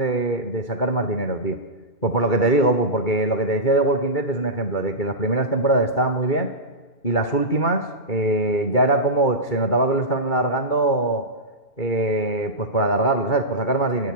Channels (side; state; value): right; late; 2.3 ms